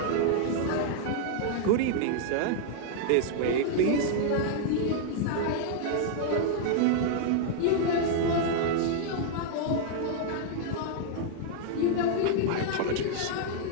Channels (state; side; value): different; both; correlation -0.01